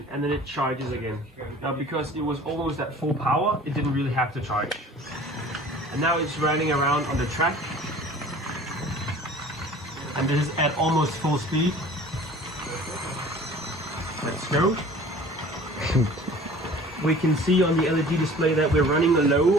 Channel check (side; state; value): both; normal; correlation 0.46